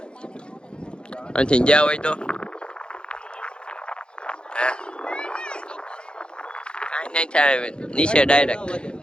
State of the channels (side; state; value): right; late; 0.052 ms